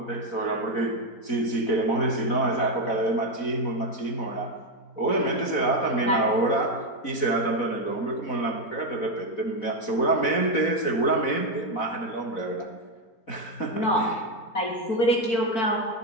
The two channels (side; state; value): right; late; 4.1 ms